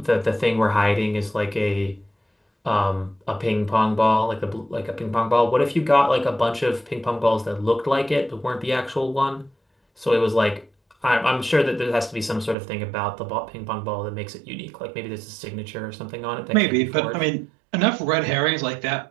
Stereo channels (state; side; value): drops out; left; at 12.6 s